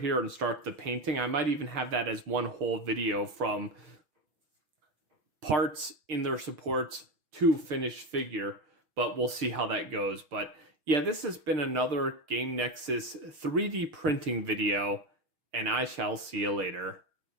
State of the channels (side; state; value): left; late; 6.2 ms